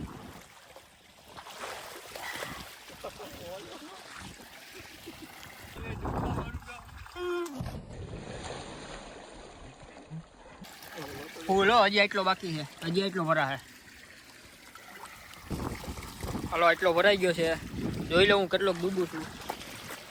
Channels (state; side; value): identical; both; correlation 1.00